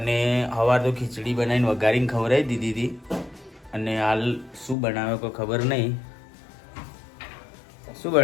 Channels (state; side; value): drops out; right; at 4.8 s